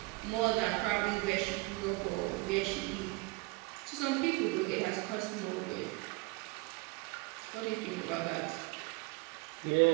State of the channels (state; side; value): quieter; left; 24.8 dB